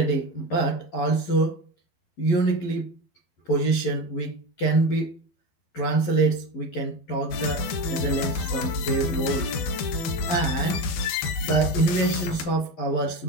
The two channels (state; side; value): late; right; 12 ms